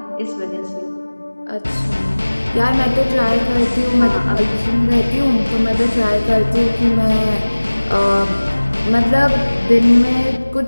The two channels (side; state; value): both; inverted; correlation -1.00